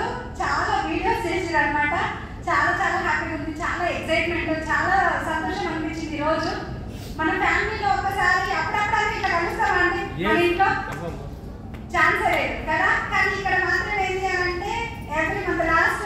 చాలా వీడియోస్ చేసారు అనమాట. చాలా చాలా హ్యాపీగా ఉంది, చాలా ఎక్సైట్మెంట్, చాలా సంతోషం అనిపించింది. ఈరోజు మన ఫ్యామిలీలో ఒకసారి అప్పుడప్పుడు ఇట్లా కలుస్తామండి. మన ఇంట్లో ఛాన్సే లేదు కదా. కానీ ఇక్కడ మాత్రం ఏంటి అని అంటే ఎవ్రీ మంత్ లాస్ట్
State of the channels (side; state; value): both; identical; correlation 1.00